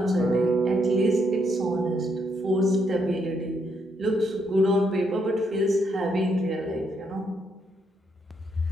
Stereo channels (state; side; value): normal; both; correlation 0.76